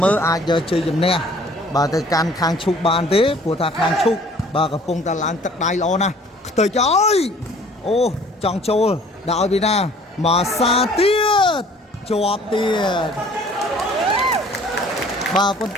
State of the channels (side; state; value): both; normal; correlation 0.53